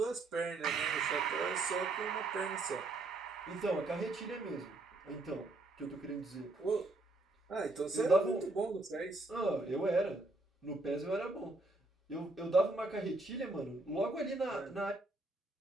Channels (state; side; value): quieter; left; 3.0 dB